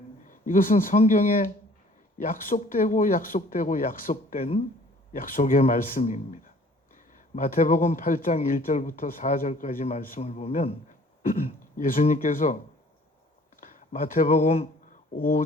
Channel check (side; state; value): both; normal; correlation 0.54